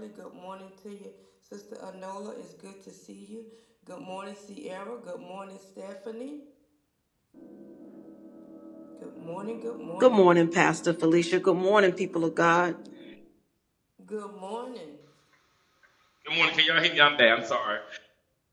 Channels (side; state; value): both; identical; correlation 1.00